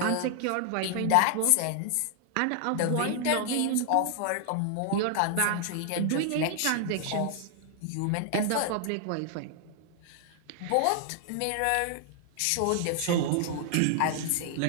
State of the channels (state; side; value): different; both; correlation 0.00